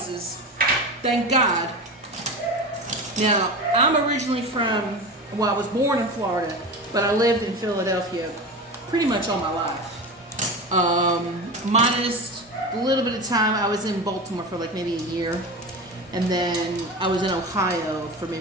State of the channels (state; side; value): normal; both; correlation 0.27